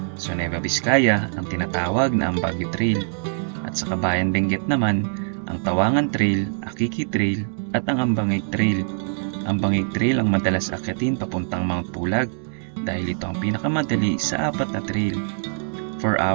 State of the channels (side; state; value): left; silent; 63 dB below the other